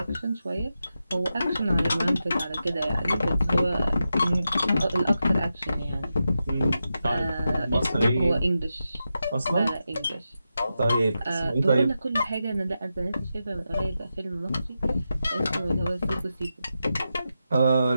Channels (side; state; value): both; inverted; correlation -0.89